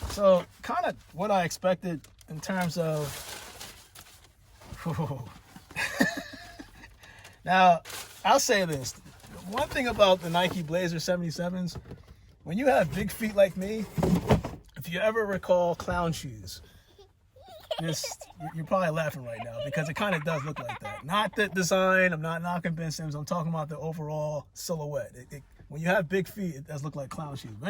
So, kind of what I expected in terms of... Now, I'll say this. One thing about the Nike Blazer 77s, when you have big feet like me, if you ever recall clown shoes, you're probably laughing right now because it kind of does look like that. Not the design. I'm not knocking Ben Simmons. I'm talking about the overall silhouette. When you have big feet, it does look like clown shoes. But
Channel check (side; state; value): both; identical; correlation 1.00